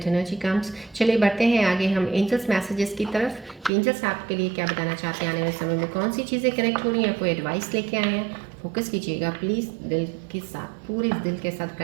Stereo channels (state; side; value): drops out; left; at 3.7 s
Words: energy comes. चलिए बढ़ते हैं आगे हम एंजल्स मैसेजेस की तरफ। एंजल्स आपके लिए क्या बताना चाहते हैं, आने वाले समय में कौन सी चीज़ें कनेक्ट हो रही हैं, कोई एडवाइस लेके आए हैं। फोकस कीजिएगा प्लीज़, दिल के साथ, पूरे दिल के साथ